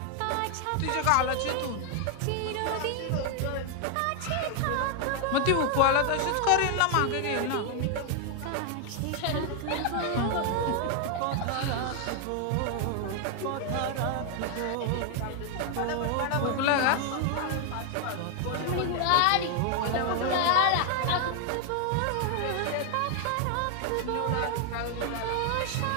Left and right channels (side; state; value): both; different; correlation 0.00